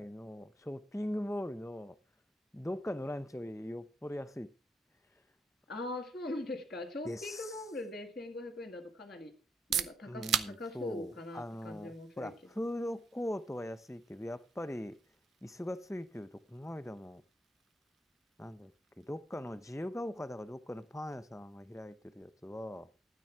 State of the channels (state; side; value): normal; both; correlation 0.78